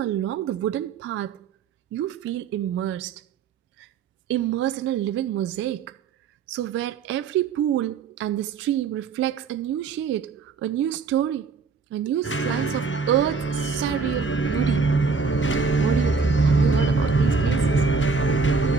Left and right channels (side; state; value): left; quieter; 5.1 dB